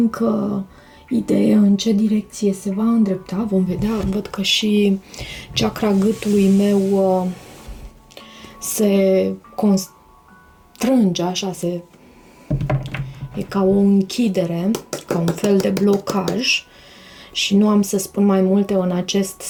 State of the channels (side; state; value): both; identical; correlation 1.00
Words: idee în ce direcție se va îndrepta. Vom vedea. Văd că și chakra gâtului meu se constrânge, așa, e ca o închidere, ca un fel de blocaj și nu am să spun mai multe în acest